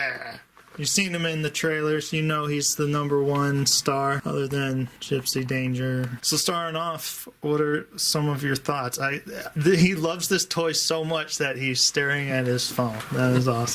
You've seen him in the trailers. You know he's the #1 star, other than Gypsy Danger. So starting off, what are some of your thoughts? He loves this toy so much that he's staring at his phone. That is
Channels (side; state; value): both; identical; correlation 1.00